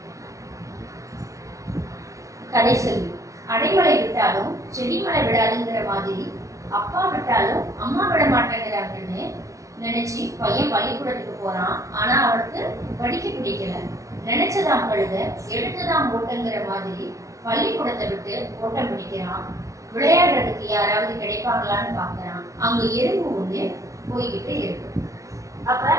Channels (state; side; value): late; left; 0.15 ms